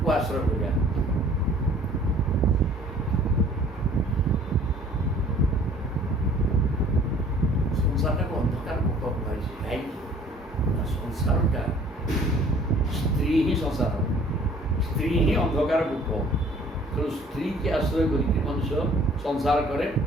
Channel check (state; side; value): normal; both; correlation 0.53